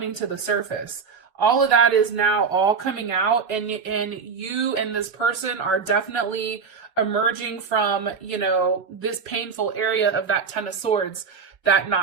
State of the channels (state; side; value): quieter; left; 5.6 dB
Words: to the surface. All of that is now all coming out, and you and this person are definitely emerging from, this painful area of that Ten of Swords, that